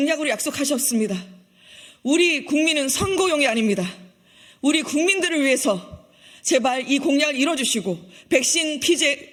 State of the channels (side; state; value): both; identical; correlation 1.00